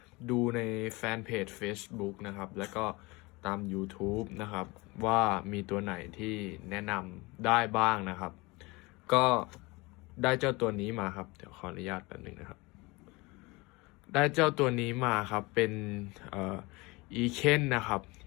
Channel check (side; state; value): right; quieter; 24.2 dB